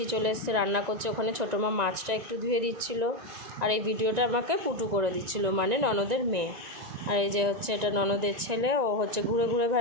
চলে এসছে, রান্না করছে। ওখানে ছোটো মা মাছটা একটু ধুয়ে দিচ্ছিল, আর এই ভিডিওটা আমাকে পুটু করে দিচ্ছিল, মানে ননদের মেয়ে। আর এই যে হচ্ছে এটা ননদের ছেলে, ও হচ্ছে ঘুরে ঘুরে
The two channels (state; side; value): late; left; 1.9 ms